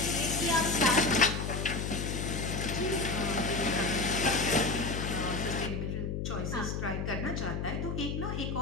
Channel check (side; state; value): left; noise; hum, 2 dB below the sound